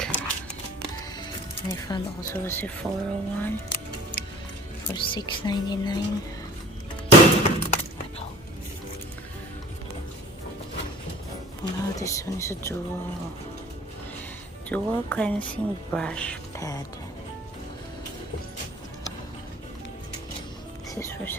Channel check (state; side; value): normal; both; correlation 0.46